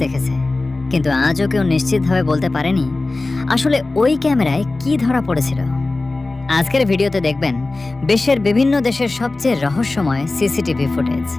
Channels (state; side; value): quieter; right; 3.2 dB